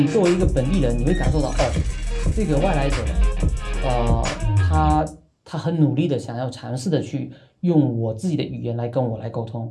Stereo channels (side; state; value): both; identical; correlation 1.00